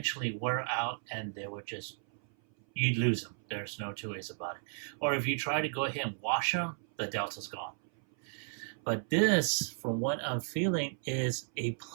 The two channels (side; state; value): left; silent; 55 dB below the other